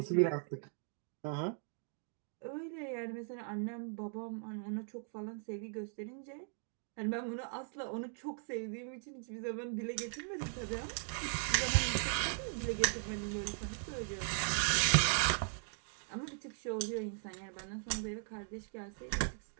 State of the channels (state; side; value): silent; left; 52 dB below the other